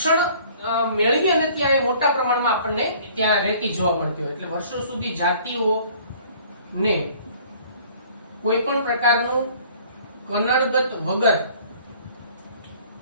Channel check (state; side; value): inverted; both; correlation -0.53